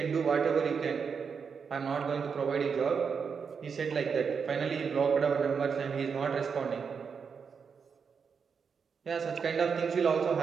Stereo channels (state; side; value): quieter; left; 6.1 dB